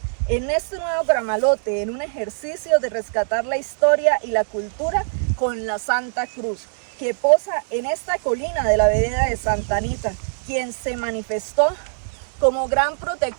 en este nuevo Gramalote, en un ejercicio de rescatar la historia y la cultura con la Santa Cruz, que posa en esta colina de la vereda de Santa Anita, quien se manifestó como gran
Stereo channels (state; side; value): silent; left; digital silence